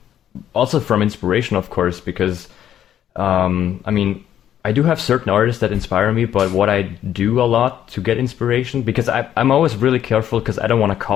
also from inspiration, of course, because I mean I do have certain artists that inspire me, but what I do a lot to get inspiration, because I'm always really careful because I don't want to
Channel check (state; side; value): quieter; right; 10.6 dB